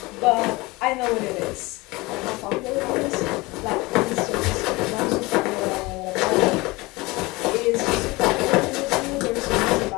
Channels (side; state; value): right; quieter; 22.8 dB